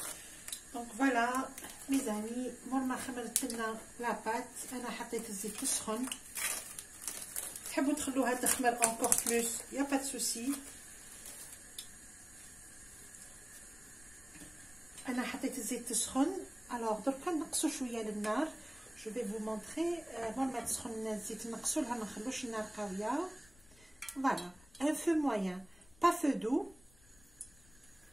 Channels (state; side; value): noise; left; rumble, 25 dB below the sound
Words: دونك فوالا ميزاني مور ما خمرت لنا لاباط انا حطيت الزيت تسخن. تحبوا تخلوها تخمر encore plus يا با سوسي. انا حطيت الزيت تسخن. الوغ دركا نقصوا شويه للنار. جو في فو مونطري مور ما تسخن الزيت نقصوا لها، ما نخلوش النار قويه. فوالا ان فو موين با فو دو